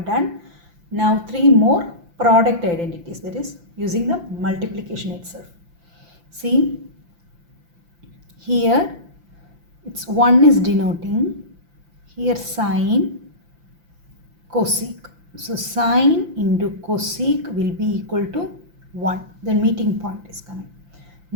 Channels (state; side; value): late; left; 5.8 ms